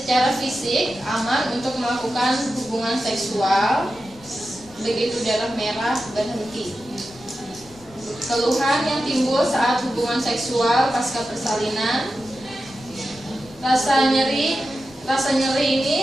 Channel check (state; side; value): noise; left; rumble, 23 dB below the sound